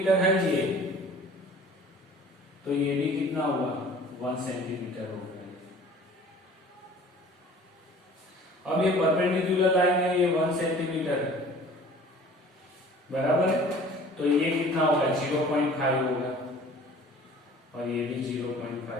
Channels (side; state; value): both; normal; correlation 0.48